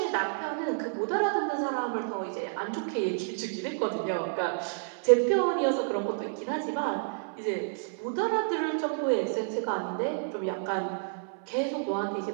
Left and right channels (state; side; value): silent; left; 58 dB below the other